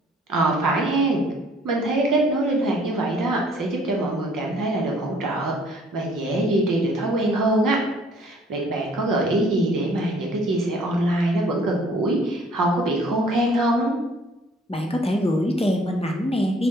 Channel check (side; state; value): both; normal; correlation 0.58